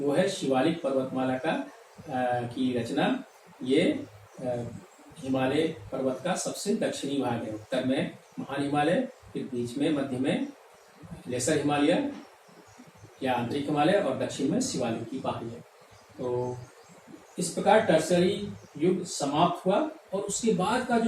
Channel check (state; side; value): identical; both; correlation 1.00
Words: है शिवालिक पर्वतमाला की रचना। ये हिमालय पर्वत का सबसे दक्षिणी भाग है। उत्तर में महान हिमालय, फिर बीच में मध्य में लेसर हिमालय या आंतरिक हिमालय और दक्षिण में शिवालिक की पहाड़ी है। तो इस प्रकार टर्सरी युग समाप्त हुआ और उसके बाद का